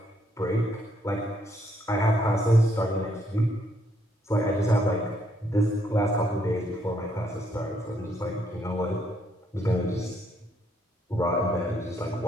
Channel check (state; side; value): normal; both; correlation 0.72